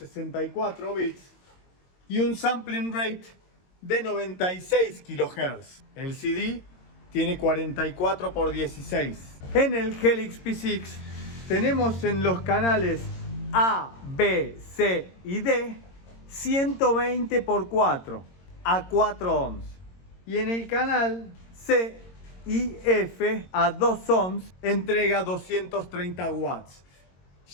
bits y un sampling rate de 96 kHz. El CD tiene 44 por 16. En el Helix P6 tenemos en los canales A, B, C y D 120 por 4 a 4 ohms. Y en el canal C y F a 2 ohms entrega 230 watts.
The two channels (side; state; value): right; late; 22 ms